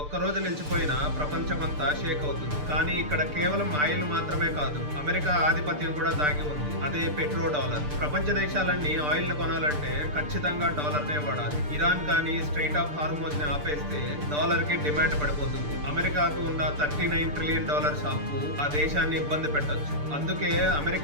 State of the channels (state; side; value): late; left; 6.8 ms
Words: ఒక్కరోజు నిలిచిపోయినా ప్రపంచం అంతా షేక్ అవుతుంది. కానీ ఇక్కడ కేవలం ఆయిల్ మాత్రమే కాదు, అమెరికా ఆధిపత్యం కూడా దాగి ఉంది. అదే పెట్రో డాలర్. ప్రపంచ దేశాలన్నీ ఆయిల్ ను కొనాలంటే ఖచ్చితంగా డాలర్ నే వాడాలి. ఇరాన్ కానీ స్ట్రైట్ ఆఫ్ హార్మోజ్ ని ఆపేస్తే డాలర్ కి డిమాండ్ పడిపోతుంది. అమెరికాకు ఉన్న $39 ట్రిలియన్ అప్పు ఆ దేశాన్ని ఇబ్బంది పెట్టొచ్చు. అందుకే